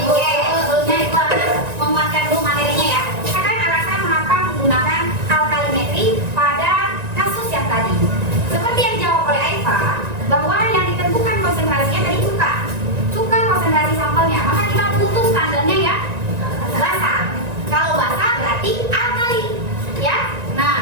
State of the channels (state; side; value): late; left; 1.9 ms